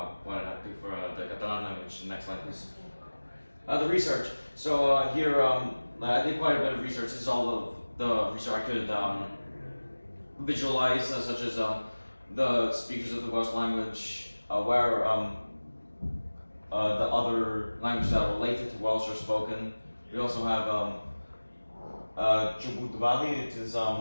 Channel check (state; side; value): inverted; both; correlation -1.00